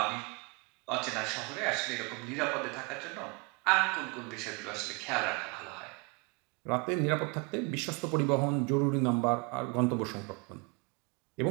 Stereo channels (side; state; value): left; quieter; 30.5 dB